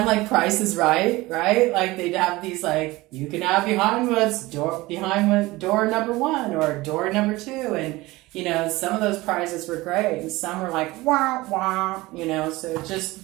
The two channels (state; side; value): quieter; left; 20.1 dB